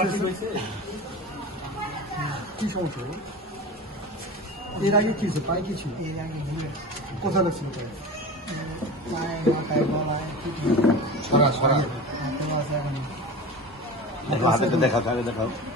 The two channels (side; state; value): both; normal; correlation 0.31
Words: হয়েছে? কি সমস্যা? এর আগে কি ছিল? পায়ে কি ছিল? এর আগে ঘুরে কোথায় লাগছিল পায়ে? পায়ে মাথায় গলায় ছড়া ছড়া। আছে এখন হাতে দেখাও, আগে দেখাও।